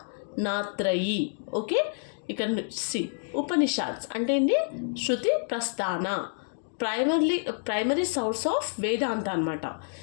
Okay, ఇక్కడ C ఉపనిషాద్స్ అంటే ఏంటి? శృతి ప్రస్థాన primary source of వేదాంత అనమాట.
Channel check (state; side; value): silent; right; digital silence